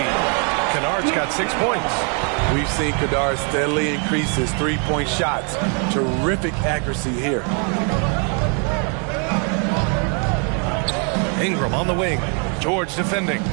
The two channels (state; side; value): quieter; left; 38.7 dB